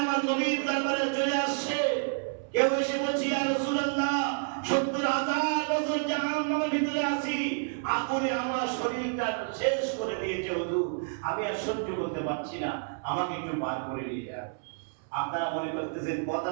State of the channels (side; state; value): left; silent; 58 dB below the other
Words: আমার নবীর দরবারে চলে আসছে। কেউ এসে বলছে, ইয়া রাসূলুল্লাহ 70,000 বছর জাহান্নামের ভিতরে আছি, আগুনে আমার শরীরটা শেষ করে দিয়েছে হুজুর, আমি আর সহ্য করতে পারছি না, আমাকে একটু বার করে নিয়ে যান। আপনারা মনে করতেছেন, কথা